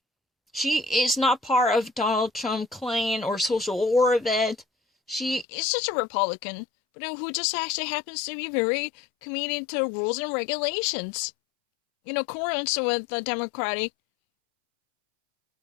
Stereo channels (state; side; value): drops out; right; at 5.5 s